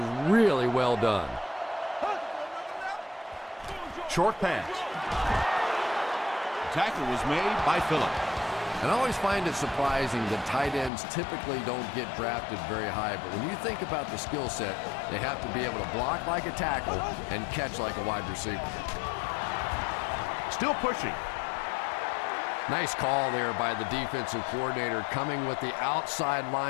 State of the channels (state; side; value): drops out; right; at 10.9 s